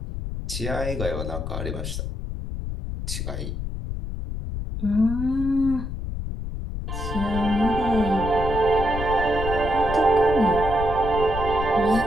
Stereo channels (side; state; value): left; noise; rumble, 5 dB below the sound